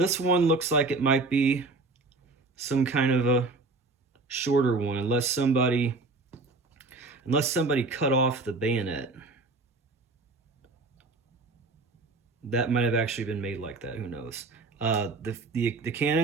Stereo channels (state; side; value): quieter; left; 3.4 dB